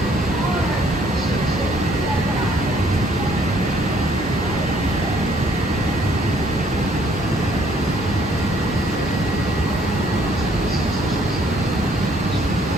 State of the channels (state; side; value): normal; both; correlation 0.64